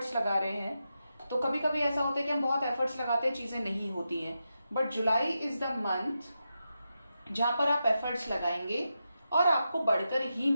लगा रहे हैं तो कभी कभी ऐसा होता है कि हम बहुत एफर्ट्स लगाते हैं, चीजें नहीं होती हैं, but July is the month जहां पर आप एफर्ट्स लगाएंगे और आपको बढ़कर ही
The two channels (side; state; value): both; inverted; correlation -0.88